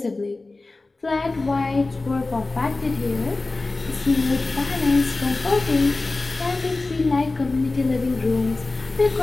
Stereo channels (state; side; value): quieter; right; 3.3 dB